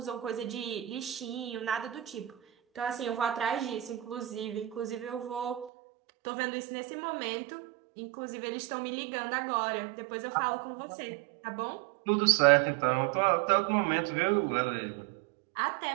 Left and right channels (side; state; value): left; drops out; at 5.7 s